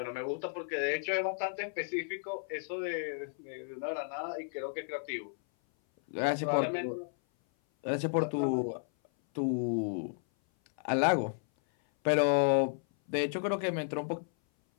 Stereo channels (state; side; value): silent; right; 56 dB below the other